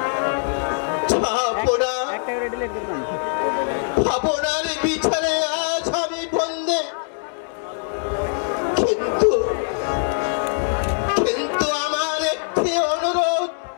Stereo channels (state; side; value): silent; right; digital silence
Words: একটা করে ডিলিট করবেন। আপনার বিছানে আজ আমি বন্দে, কিন্তু আমার একটি অনুরোধ,